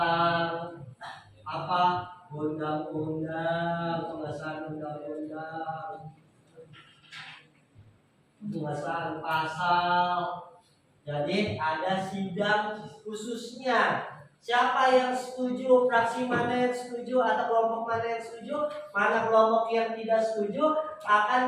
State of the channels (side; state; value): both; identical; correlation 1.00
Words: apa undang-undang, pengesahan undang-undang, pengesahan pasal. Jadi ada sidang khususnya. Siapa yang setuju, fraksi mana yang setuju, atau kelompok mana yang setuju, mana kelompok yang tidak setuju,